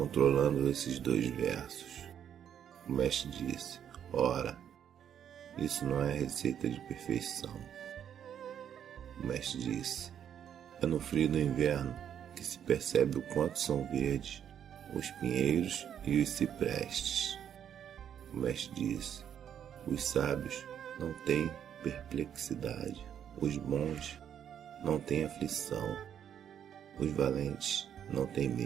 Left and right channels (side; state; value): left; quieter; 9.2 dB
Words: esses dois versos. O mestre disse: ora, isso não é receita de perfeição. O mestre disse: é no frio do inverno que se percebe o quanto são verdes os pinheiros e os ciprestes. O mestre disse: os sábios não têm perplexidade, os bons não têm aflição, os valentes não têm